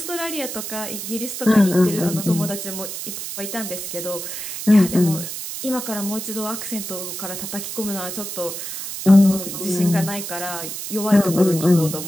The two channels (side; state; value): right; noise; hiss, 7 dB below the sound